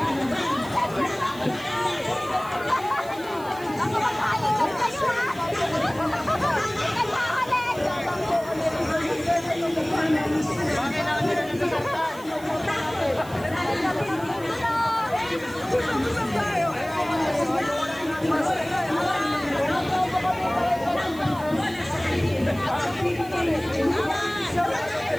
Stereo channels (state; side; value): noise; right; hiss, 20 dB below the sound